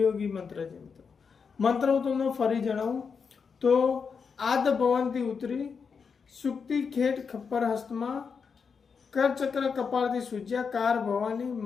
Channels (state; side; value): quieter; right; 5.8 dB